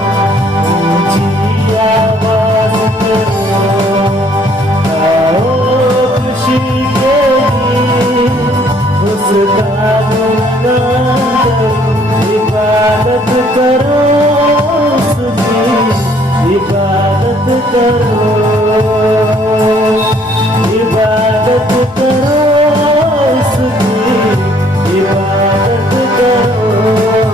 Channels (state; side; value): normal; both; correlation 0.62